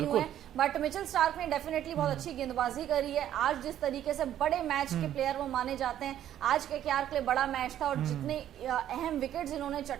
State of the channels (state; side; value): quieter; left; 11.3 dB